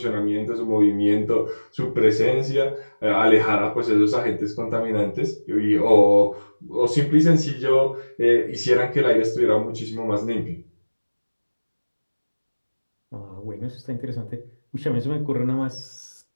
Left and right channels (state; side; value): inverted; both; correlation -1.00